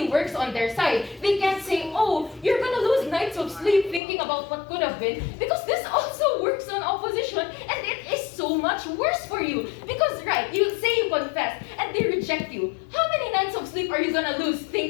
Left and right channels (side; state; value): right; drops out; at 4.0 s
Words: works on their side. They can't say, oh, you're gonna lose nights of sleep thinking about what could have been, because this also works on opposition, and it is so much worse for you. Because right, you say you confess, and they reject you. How many nights of sleep are you gonna lose